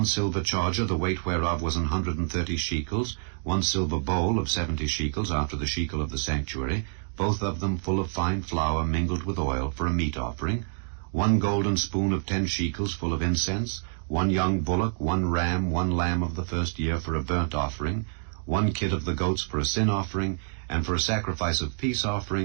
silver charger, the weight whereof was 130 shekels, 1 silver bowl of 70 shekels after the shekel of the sanctuary, both of them full of fine flour mingled with oil for a meat offering, 1 golden spoon of 10 shekels full of incense, 1 young bullock, 1 ram, 1 lamb of the first year for a burnt offering, 1 kid of the goats for a sin offering, and for a sacrifice of peace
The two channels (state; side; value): silent; left; digital silence